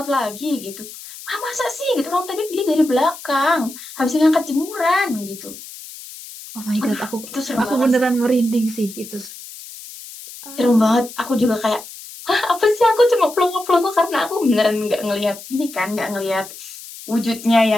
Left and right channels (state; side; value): noise; left; hiss, 15 dB below the sound